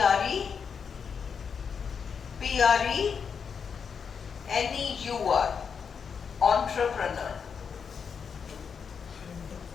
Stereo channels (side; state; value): right; quieter; 6.4 dB